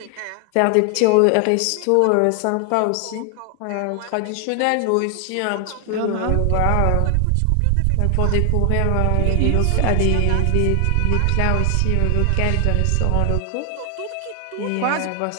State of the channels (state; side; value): different; both; correlation 0.00